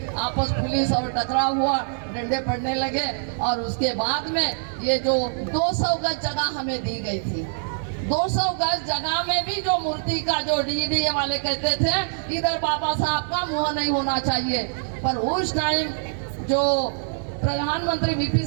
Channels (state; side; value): silent; left; digital silence